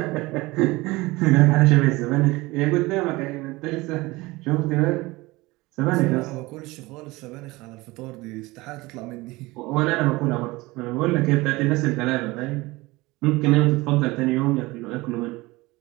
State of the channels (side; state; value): left; quieter; 21.4 dB